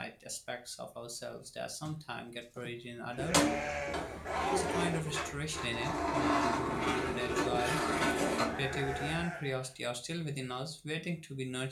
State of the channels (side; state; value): both; identical; correlation 1.00